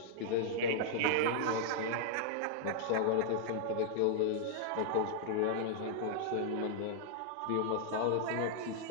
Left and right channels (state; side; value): different; both; correlation -0.01